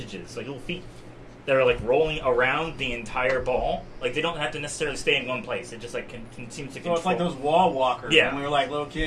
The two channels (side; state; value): both; identical; correlation 1.00